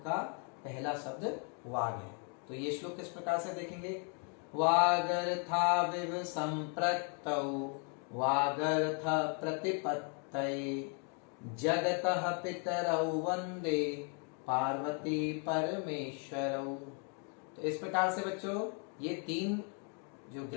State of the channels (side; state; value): right; quieter; 39.5 dB